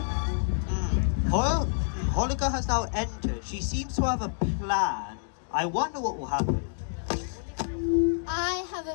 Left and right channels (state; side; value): silent; right; digital silence